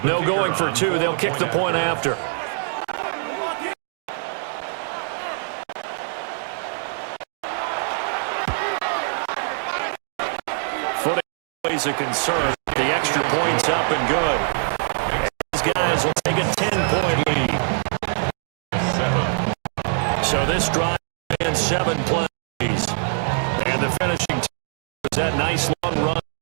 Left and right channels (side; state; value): left; silent; 57 dB below the other